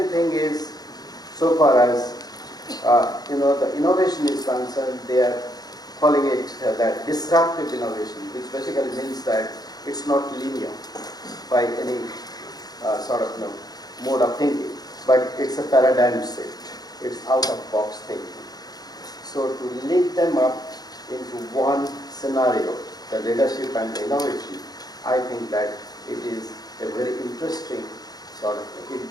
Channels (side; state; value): right; late; 0.19 ms